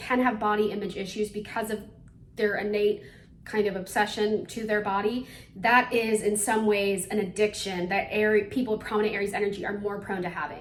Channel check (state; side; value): identical; both; correlation 1.00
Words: have body image issues because of their innate kind of obsession to their body. That is in some ways an addiction that people with prominent Aries energy are more prone to